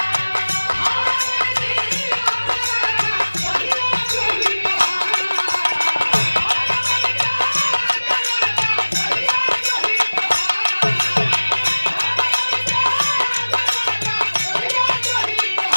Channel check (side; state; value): both; inverted; correlation -1.00